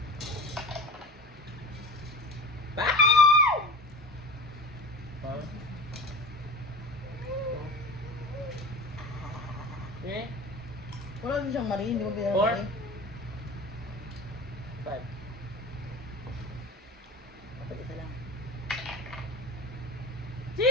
Huh? Eh? Wala din siyang mali, hindi mo 4. pinamali. 5. Dapat isa lang.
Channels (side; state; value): both; normal; correlation 0.34